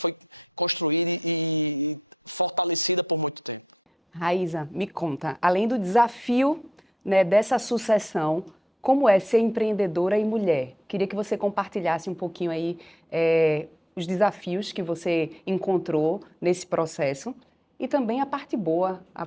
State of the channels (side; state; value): both; normal; correlation 0.72